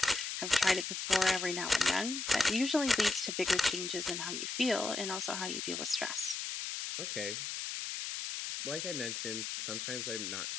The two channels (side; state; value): left; noise; hiss, 4 dB below the sound